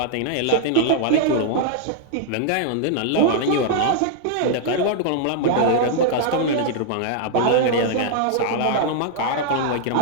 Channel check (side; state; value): both; different; correlation -0.01